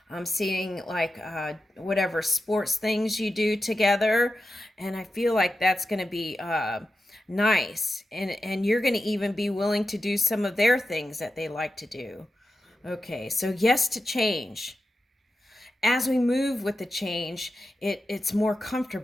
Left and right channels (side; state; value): both; normal; correlation 0.90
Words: I'm seeing like whatever sports things you do together, and I feel like that's going to be nice, and you're going to even be willing to do some of their things that they like to do. Okay, so yes to change. As we move with the change, it's more